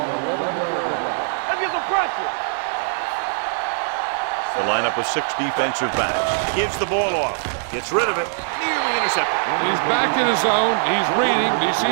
11-yard line. Let's get some pressure. Yeah, you see me. The lineup with 6 defensive backs. Gives the ball off. Gets rid of it. Nearly intercepted. He's back in his zone. He's reading. He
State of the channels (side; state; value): left; silent; 59 dB below the other